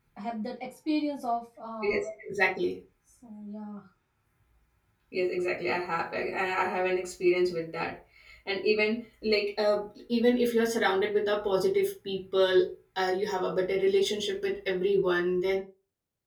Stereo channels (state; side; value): identical; both; correlation 1.00